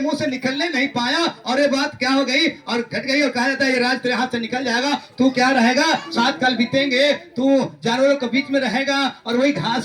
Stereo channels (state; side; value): identical; both; correlation 1.00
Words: से निकलने नहीं पाया और ये बात क्या हो गई और घट गई, और कहा जाता है ये राज तेरे हाथ से निकल जाएगा, तू क्या रहेगा, 7 साल बीतेंगे, तू जानवरों के बीच में रहेगा और वही घास